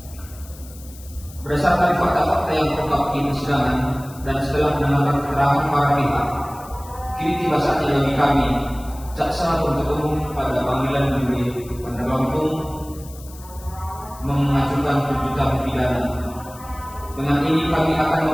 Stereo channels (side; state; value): left; noise; hiss, 20 dB below the sound